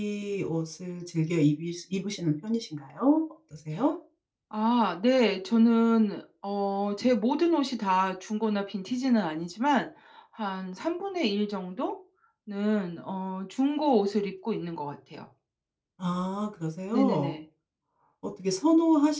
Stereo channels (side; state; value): both; identical; correlation 1.00